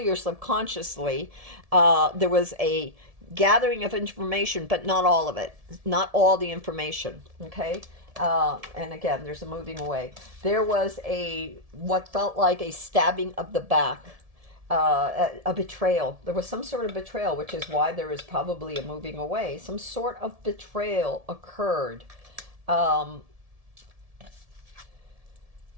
or subconsciously, there was a gathering of information, but not all of it, not all the information. Okay. And again, there's a moving away. There was what felt like a stabbing of the back, a betrayal. There was some sort of betrayal, which is why there is probably a moving away. Some sort of betrayal occurred. For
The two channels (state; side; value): late; left; 1.7 ms